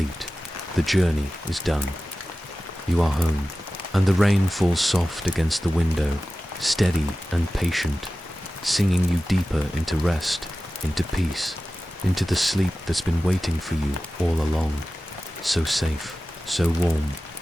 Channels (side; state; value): both; normal; correlation 0.95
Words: The journey is done. You are home, and the rain falls soft against the window, steady and patient, singing you deeper into rest, into peace, into the sleep that's been waiting for you all along. So safe, so warm,